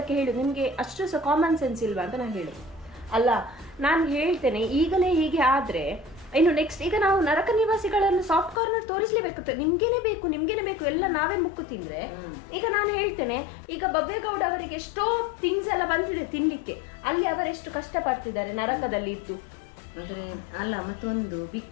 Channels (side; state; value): right; drops out; at 8.6 s